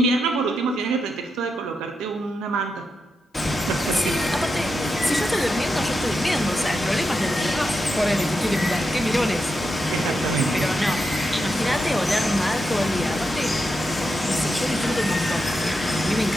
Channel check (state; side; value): normal; both; correlation 0.86